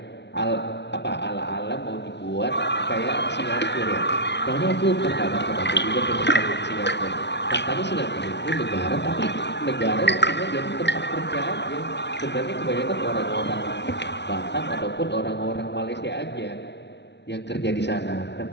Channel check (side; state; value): right; late; 0.50 ms